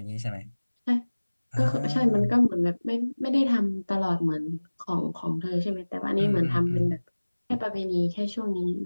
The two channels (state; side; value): inverted; both; correlation -1.00